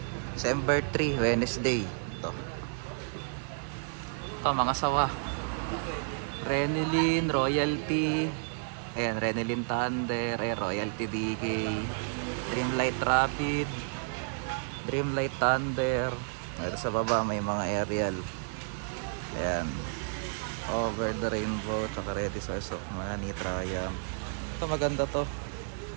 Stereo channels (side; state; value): left; silent; digital silence